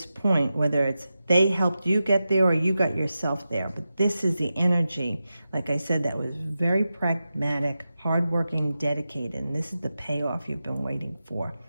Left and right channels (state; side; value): inverted; both; correlation -0.92